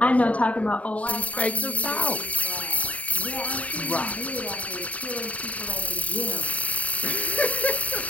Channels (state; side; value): late; right; 0.068 ms